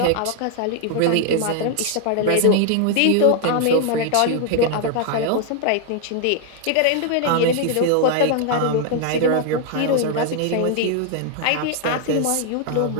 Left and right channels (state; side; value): different; both; correlation 0.00